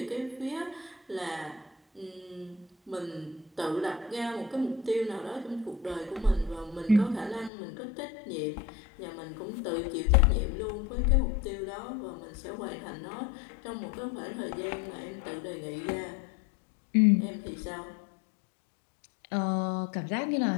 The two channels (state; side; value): drops out; right; at 7.5 s